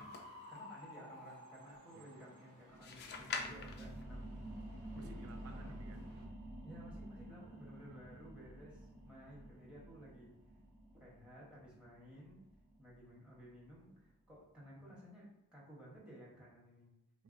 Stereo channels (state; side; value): normal; both; correlation 0.48